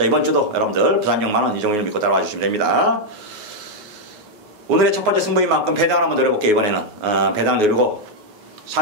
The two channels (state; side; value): late; left; 5.2 ms